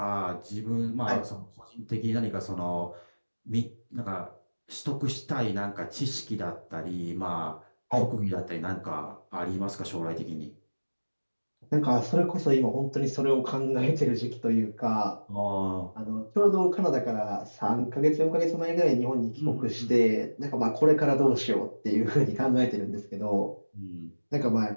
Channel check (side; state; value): both; inverted; correlation -1.00